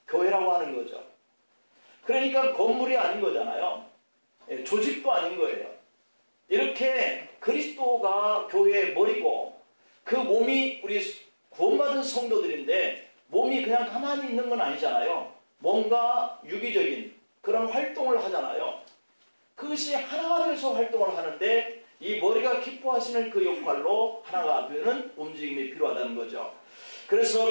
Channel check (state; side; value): inverted; both; correlation -1.00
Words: 교회라고 하는 거죠. 그러니까 건물이 아닌 거잖아요. 조직도 아닌 거예요. 이렇게 그리스도가 교회의 머리고 그 몸이 우리 구원받은 성도들인데, 몸이 그냥 가만히 있는 건 아니잖아요. 뭔가 유기적인 그런 활동을 하잖아요. 그것이 하나가 돼서 활동을 하는데 이 머리가 기뻐하시는 그 역할로 하나가 되는 움직임이 필요하다는 거죠.